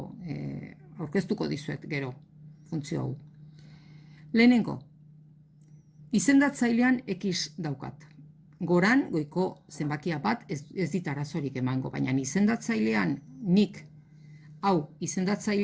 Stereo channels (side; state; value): both; identical; correlation 1.00